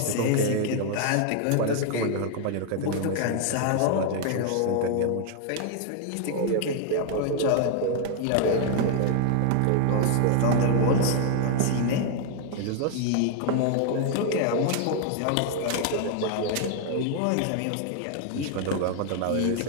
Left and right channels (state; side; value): different; both; correlation 0.00